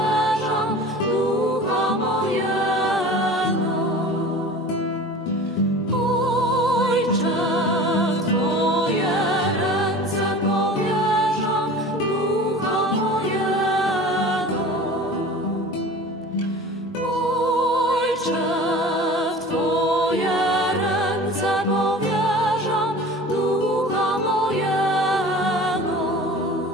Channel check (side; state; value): both; normal; correlation 0.39